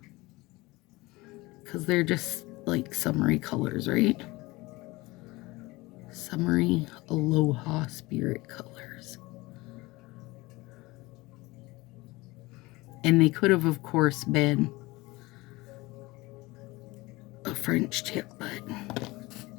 Because they're just like summery colors, right? Summery Aloha Spirit colors. And they could have, of course, been a French tip, but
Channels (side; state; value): right; quieter; 21.7 dB